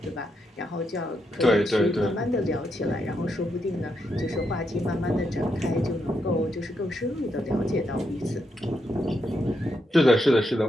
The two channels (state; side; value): normal; both; correlation 0.81